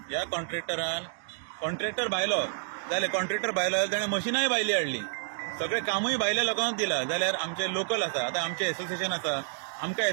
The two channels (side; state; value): left; silent; digital silence